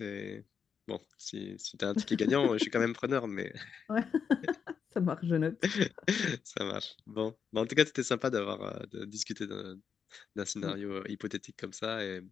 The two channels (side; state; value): right; quieter; 6.8 dB